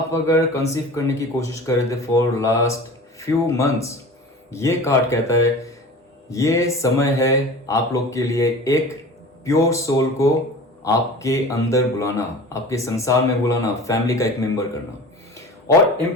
अगर कंसीव करने की कोशिश कर रहे थे फॉर लास्ट फ्यू मंथ्स, ये कार्ड कहता है ये समय है आप लोग के लिए एक प्योर सोल को आपके अंदर बुलाना, आपके संसार में बुलाना, फैमिली का एक मेंबर करना। और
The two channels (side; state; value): both; normal; correlation 0.37